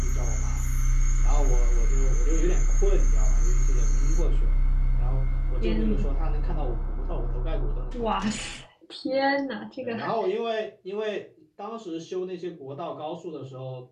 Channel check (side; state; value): both; identical; correlation 1.00